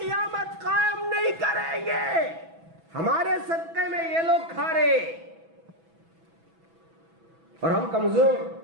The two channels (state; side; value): late; left; 6.1 ms